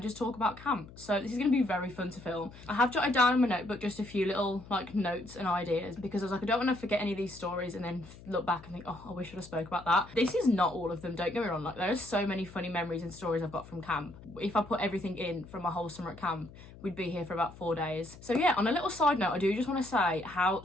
just talk about camp. So this is going to be very fun to film. I have jotted down in my notebook just a few little like notes and ideas because I was like, I don't want to forget any of these stories and then look back and think, oh, I wish I'd have spoke about that. This is not all of them, don't get me wrong, like there are so many funny memories and stories I've got from camp. If I put everything in from my whole summer at camp, we'd be here for about 4 days. So yeah, on a little side note, I do just want to say how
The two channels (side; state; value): left; noise; hum, 18 dB below the sound